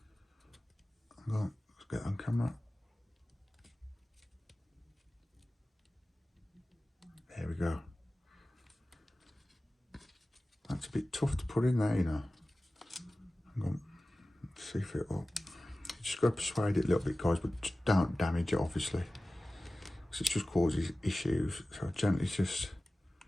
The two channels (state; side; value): normal; both; correlation 0.96